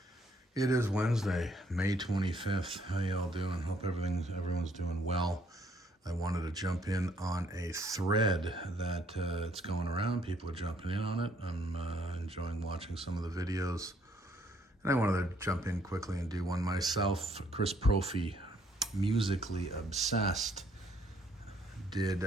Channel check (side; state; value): both; normal; correlation 0.66